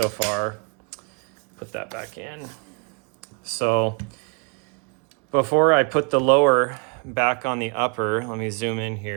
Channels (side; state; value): left; quieter; 36.8 dB